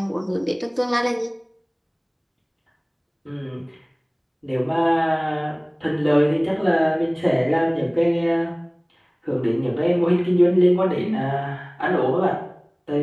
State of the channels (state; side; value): identical; both; correlation 1.00